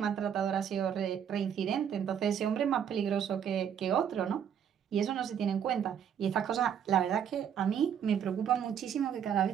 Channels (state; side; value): quieter; left; 8.5 dB